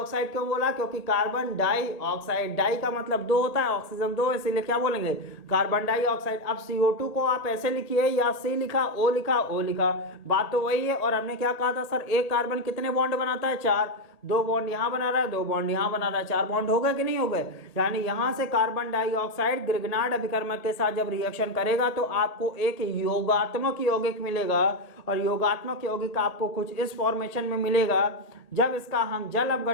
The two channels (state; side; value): late; right; 1.7 ms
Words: क्यों बोला, क्योंकि कार्बन डाइऑक्साइड, डाई का मतलब दो होता है, ऑक्सीजन दो, इसीलिए क्या बोलेंगे, कार्बन डाइऑक्साइड। अब CO2 को आप ऐसे लिखिए, या C लिखा, O लिखा, O लिखा, बात तो वही है। और हमने क्या कहा था सर, एक कार्बन कितने बॉन्ड बनाता है, 4। 2 बॉन्ड यहां बना रहा है, 2 बॉन्ड यहां बना रहा है, 4 बॉन्ड हो गए कि नहीं हो गए। यानी यहां से कार्बन डाइऑक्साइड ग्रिग्नार्ड अभिकर्मक के साथ जब रिएक्शन करेगा तो आपको एक योगात्मक यौगिक मिलेगा। और योगात्मक यौगिक आपको कुछ इस फॉर्मेशन में मिलेगा। जब इसका हम जल